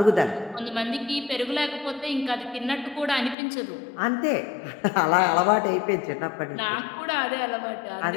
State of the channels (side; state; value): right; drops out; at 3.4 s